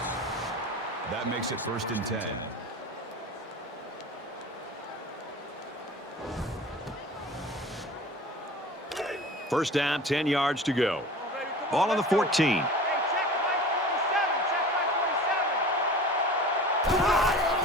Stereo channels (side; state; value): both; normal; correlation 0.38